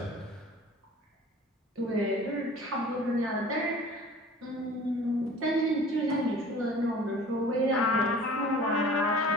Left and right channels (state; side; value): normal; both; correlation 0.45